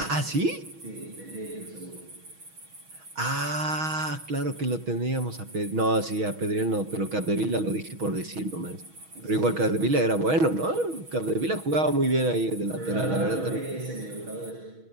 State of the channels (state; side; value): late; left; 6.3 ms